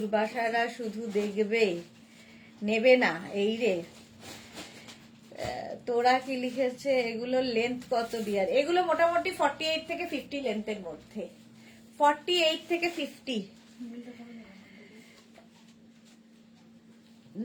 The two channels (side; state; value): both; identical; correlation 1.00